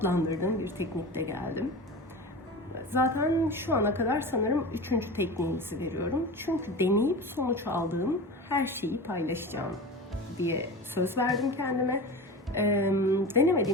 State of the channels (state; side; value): normal; both; correlation 0.30